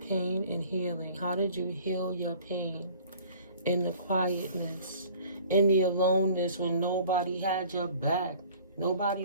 Pain and healing. How did you heal your pain? In the quietness. In the aloneness when nobody had your back. Nobody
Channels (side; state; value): both; inverted; correlation -0.50